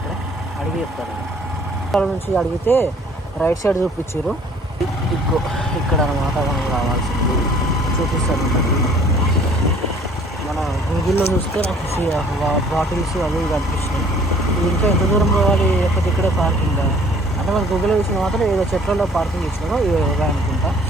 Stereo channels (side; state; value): both; normal; correlation 0.55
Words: అడిగి చెప్తారు. ఇక్కడ నుంచి అడిగితే రైట్ సైడ్ చూపించారు. ఇక్కడ అనమాట మనం రావాల్సింది చూపిస్తారు. మన గూగుల్లో చూస్తే నాకు బాటిల్స్ అవి కనిపిస్తున్నాయి. ఇంకా ఎంత దూరం పోవాలి, లేకపోతే ఇక్కడే పార్కింగ్ అంటే మన గూగుల్లో చూసిన మాత్రం ఏదో చెట్లలో పార్కింగ్ ఇచ్చినారో ఇవే అనుకుంటా.